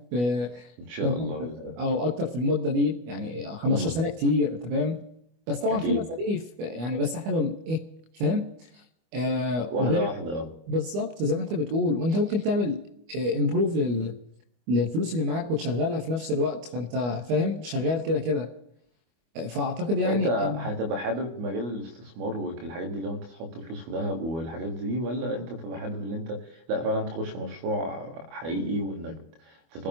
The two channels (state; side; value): late; left; 25 ms